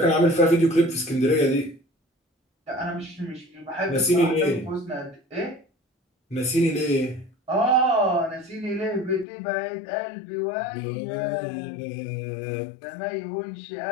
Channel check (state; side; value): drops out; right; at 9.2 s